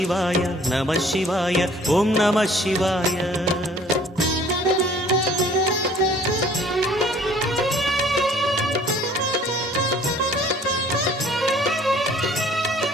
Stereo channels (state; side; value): normal; both; correlation 0.54